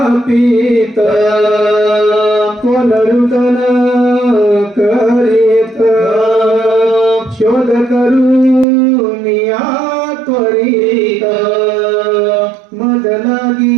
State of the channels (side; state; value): left; drops out; at 8.7 s